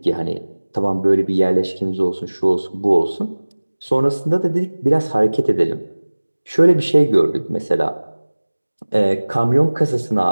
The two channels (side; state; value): both; inverted; correlation -1.00